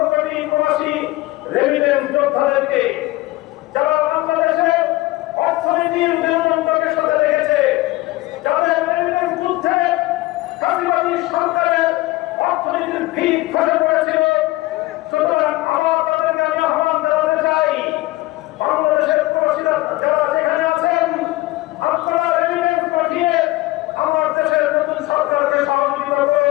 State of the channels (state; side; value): quieter; right; 19.2 dB